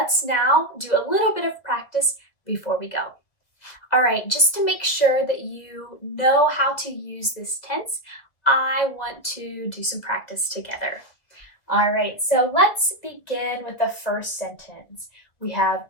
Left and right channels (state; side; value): late; right; 1.8 ms